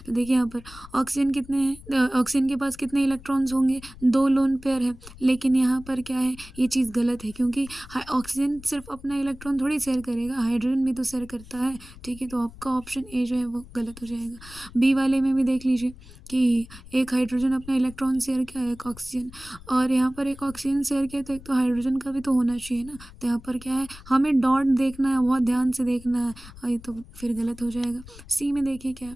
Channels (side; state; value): left; noise; rumble, 18 dB below the sound